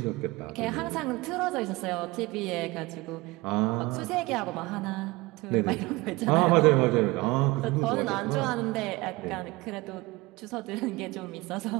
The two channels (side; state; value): left; quieter; 22.2 dB